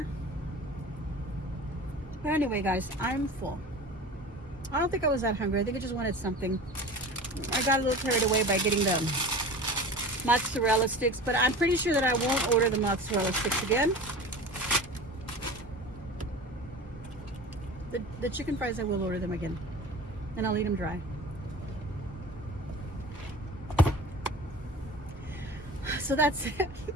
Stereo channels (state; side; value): normal; both; correlation 0.36